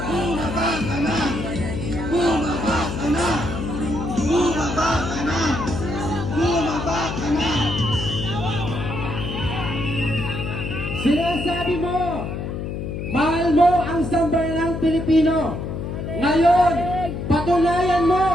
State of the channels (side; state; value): left; noise; hum, 5 dB below the sound